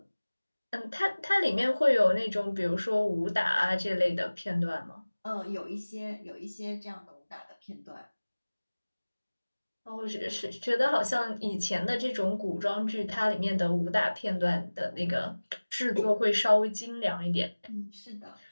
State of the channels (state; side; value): inverted; both; correlation -1.00